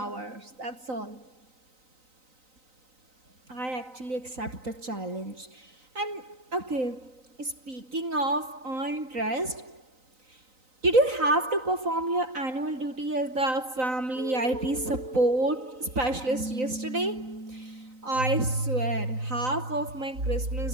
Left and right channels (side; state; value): left; late; 3.9 ms